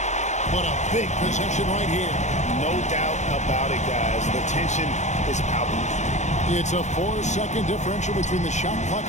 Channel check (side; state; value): right; late; 0.34 ms